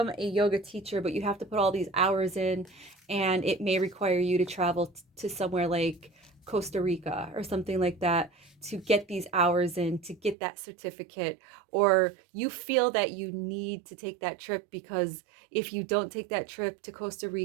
a yoga teacher, but you have to put all these hours in, and it may require you to travel to somewhere like Costa Rica or something like that to get these hours in, to get that certificate. Or you feel that you need to take that trip because if you don't take that trip to Costa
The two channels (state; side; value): drops out; left; at 10.4 s